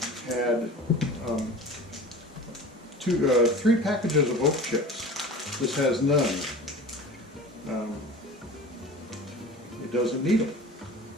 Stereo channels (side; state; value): both; normal; correlation 0.38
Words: had 3 packages of oak chips. This has none. It doesn't need them.